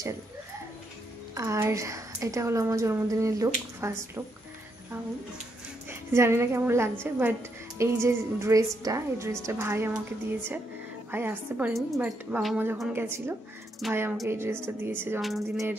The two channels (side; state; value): both; normal; correlation 0.78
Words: আর এটা হলো আমার জন্মদিনের লুক, ফার্স্ট লুক। জানি না কেমন লাগছে, বাট এই যে ড্রেসটা, এই ড্রেসটা ভাই আমাকে দিয়েছে। ভাই আসতে পারেনি, বাট বাবা মা যখন গেছিলো ভাই আমাকে এই ড্রেসটা দিয়েছে, জন্মদিনের